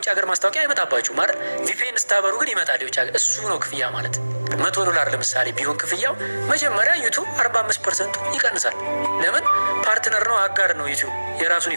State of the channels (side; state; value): both; inverted; correlation -1.00